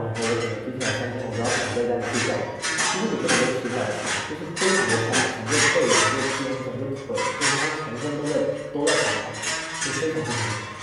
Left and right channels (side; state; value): both; identical; correlation 1.00